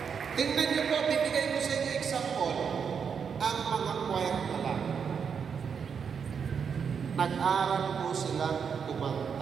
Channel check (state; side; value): quieter; left; 6.7 dB